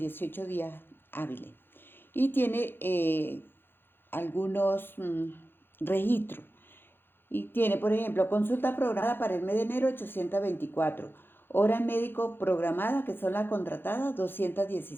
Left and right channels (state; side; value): late; right; 0.10 ms